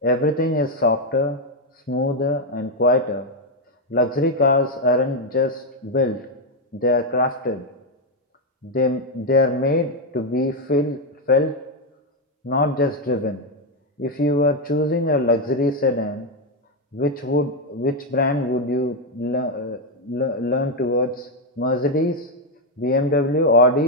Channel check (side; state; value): both; normal; correlation 0.03